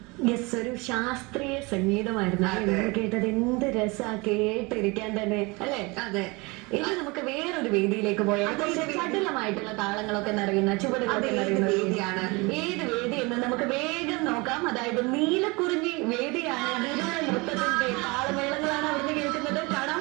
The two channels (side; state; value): left; quieter; 26.2 dB